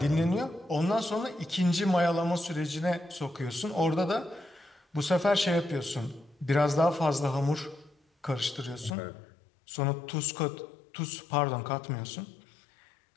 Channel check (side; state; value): right; drops out; at 9.0 s